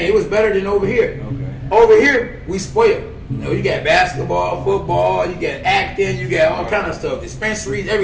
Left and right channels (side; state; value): both; identical; correlation 1.00